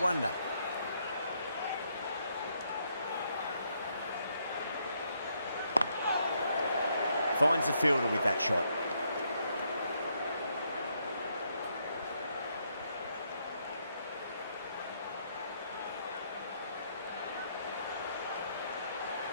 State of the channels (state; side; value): inverted; both; correlation -0.74